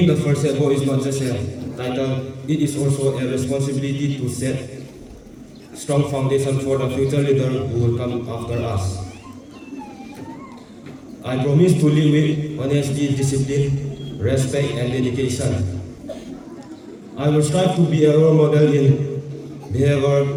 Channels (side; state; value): both; identical; correlation 1.00